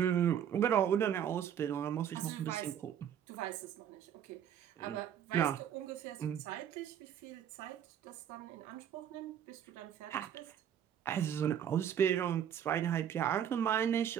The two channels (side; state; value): left; quieter; 9.3 dB